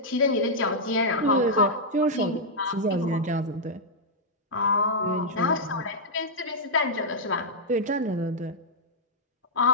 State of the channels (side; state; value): both; normal; correlation -0.06